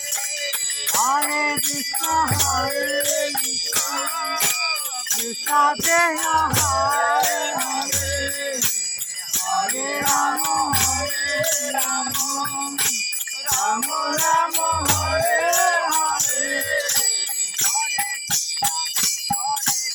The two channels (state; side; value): identical; both; correlation 1.00